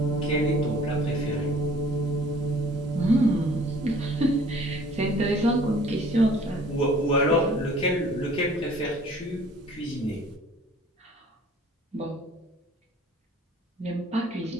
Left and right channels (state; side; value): normal; both; correlation 0.52